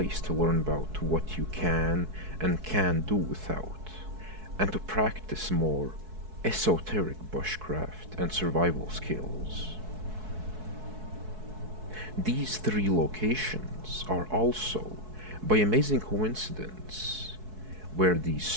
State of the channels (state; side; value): late; left; 4.6 ms